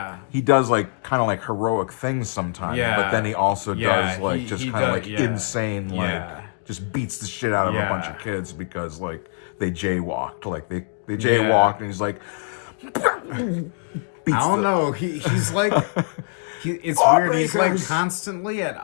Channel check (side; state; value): right; silent; digital silence